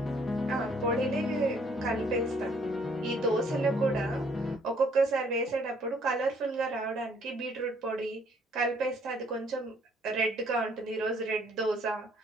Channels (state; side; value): normal; both; correlation 0.63